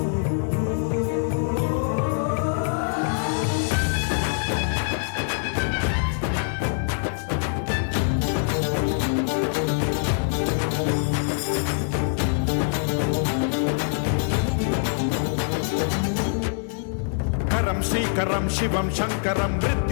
श्रीकरं शिवं शंकरं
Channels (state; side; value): silent; right; 61 dB below the other